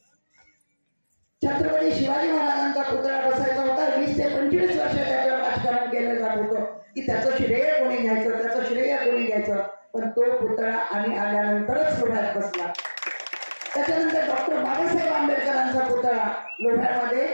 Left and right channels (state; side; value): inverted; both; correlation -1.00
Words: छत्रपती शिवाजी महाराजांचा पुतळा बसायचा होता. 20 ते 25 वर्ष त्याच्यावर राजकारण केलं जात होतं की त्याचं श्रेय कोणी घ्यायचं, त्याचं श्रेय कोणी घ्यायचं. पण तो पुतळा आम्ही आल्यानंतरच लोह्यात बसला. त्याच्यानंतर डॉक्टर बाबासाहेब आंबेडकरांचा पुतळा लोह्यामध्ये